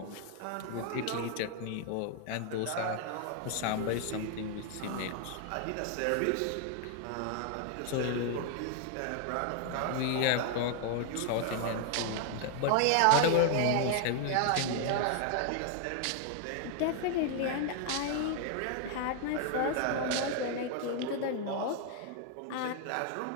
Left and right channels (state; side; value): different; both; correlation 0.00